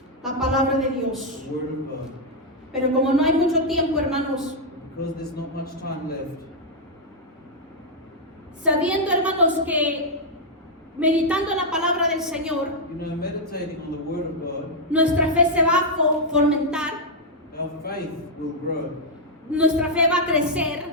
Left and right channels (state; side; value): normal; both; correlation -0.03